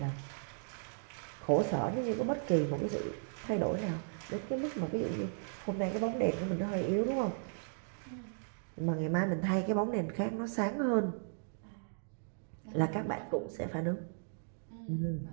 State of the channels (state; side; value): silent; left; digital silence